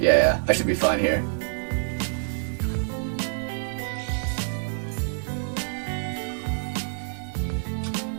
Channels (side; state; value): left; silent; digital silence